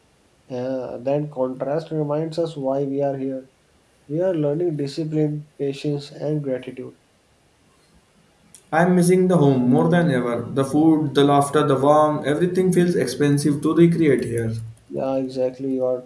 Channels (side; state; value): both; identical; correlation 1.00